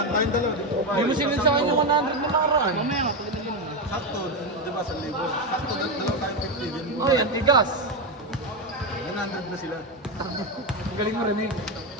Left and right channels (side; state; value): both; normal; correlation 0.10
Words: tayong dalawa. Hindi mo sinid sa akin yung 100 na nakaraan. Mamaya nga, pwede na din naman. Sakto, di ba, 1,000. Sakto, dalawa tayong 50 din. Ay, ang tigas. 100 na sila. Ang galing mo rin eh.